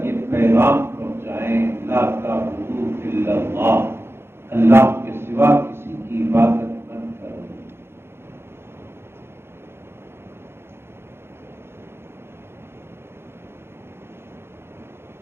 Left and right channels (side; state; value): left; late; 0.12 ms